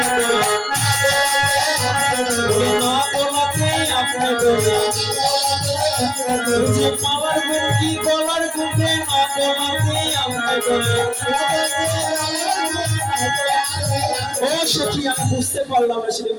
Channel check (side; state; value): both; identical; correlation 1.00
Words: না বলাতে আপনার মালার গুণ কি গলার গুণে না বলাতে আপনার ও সখী, আমি বুঝতে পারলাম না সেটা